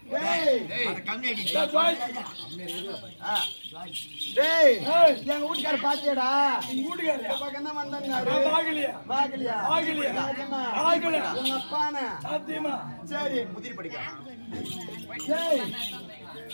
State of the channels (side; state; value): both; inverted; correlation -1.00